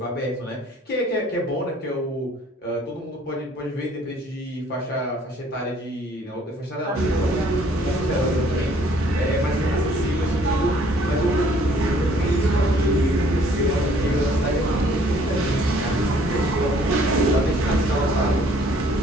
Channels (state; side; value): normal; both; correlation 0.59